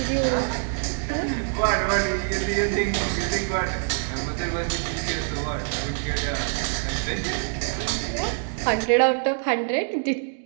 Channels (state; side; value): silent; left; 62 dB below the other